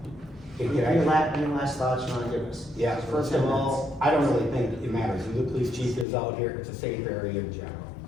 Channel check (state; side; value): drops out; right; at 6.1 s